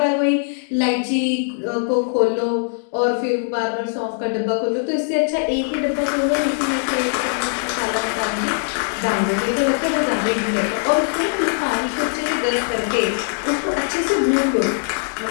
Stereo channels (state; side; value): silent; right; digital silence